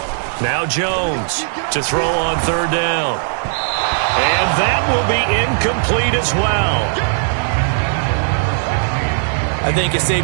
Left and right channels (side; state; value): left; silent; 66 dB below the other